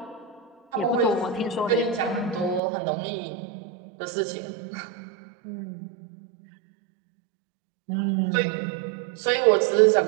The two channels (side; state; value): left; drops out; at 2.6 s